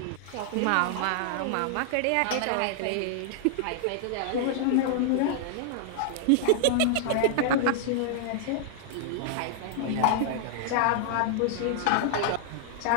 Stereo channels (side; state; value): both; different; correlation -0.01